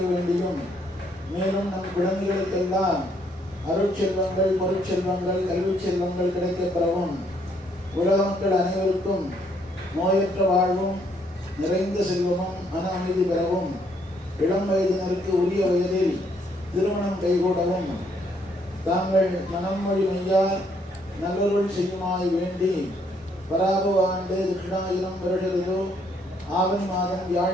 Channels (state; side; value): normal; both; correlation 0.69